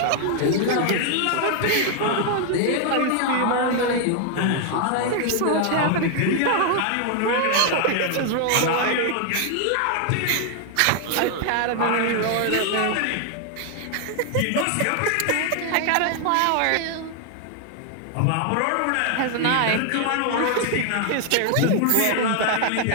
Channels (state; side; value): different; both; correlation 0.00